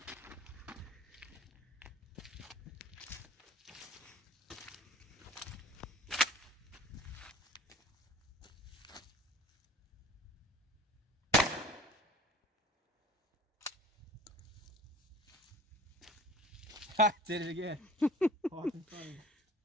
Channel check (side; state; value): both; normal; correlation 0.45